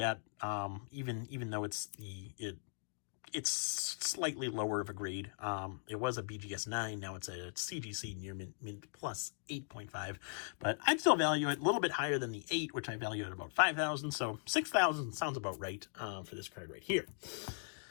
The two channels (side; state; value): right; silent; digital silence